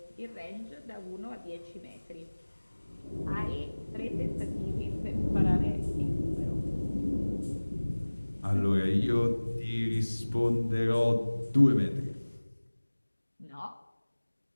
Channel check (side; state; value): both; inverted; correlation -1.00